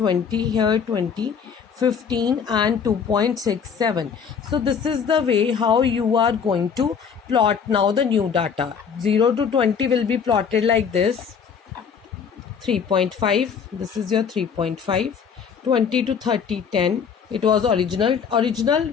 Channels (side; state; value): right; quieter; 6.7 dB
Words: here 20, 15 and 2.67. So this is the way how you are going to plot now the new data. 0 to 20 will be plotted like this. 3.5, this is your 3.5. 20 to 30, 10. It was original